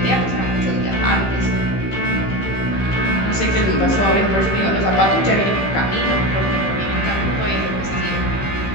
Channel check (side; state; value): right; late; 15 ms